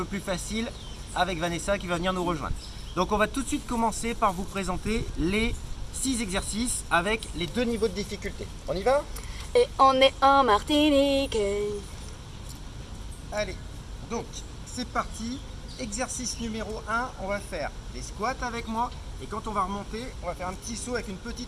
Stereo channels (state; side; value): identical; both; correlation 1.00